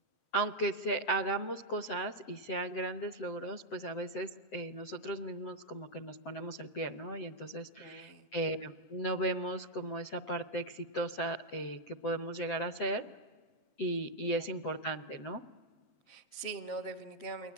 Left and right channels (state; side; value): late; right; 7.8 ms